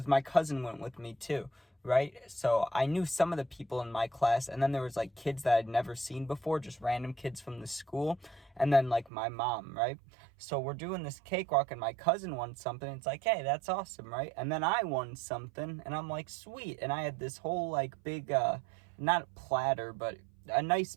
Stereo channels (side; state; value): left; drops out; at 9.1 s